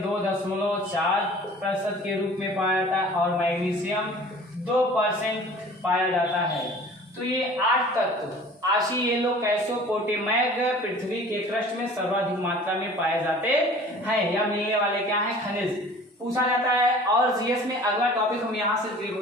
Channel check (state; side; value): normal; both; correlation 0.46